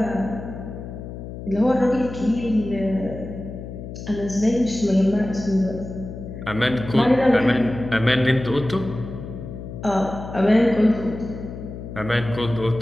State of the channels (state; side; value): noise; left; hum, 10 dB below the sound